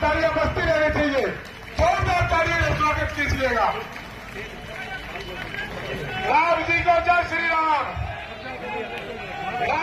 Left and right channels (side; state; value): both; identical; correlation 1.00